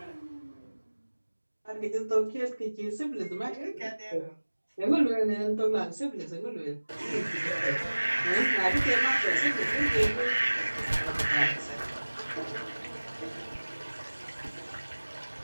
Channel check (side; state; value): both; inverted; correlation -1.00